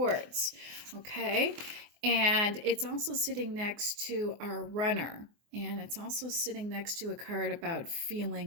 okay? And it's also sitting next to our Runner. And it's also sitting next to a card about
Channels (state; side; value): late; left; 24 ms